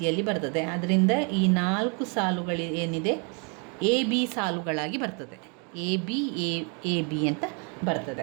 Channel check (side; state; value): left; quieter; 35.2 dB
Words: ಬರ್ತದೆ. ಅದರಿಂದ ಈ 4 ಸಾಲುಗಳು ಏನಿದೆ AB ಸಾಲುಗಳಾಗಿ ಬರ್ತದೆ. AB ಅಂತ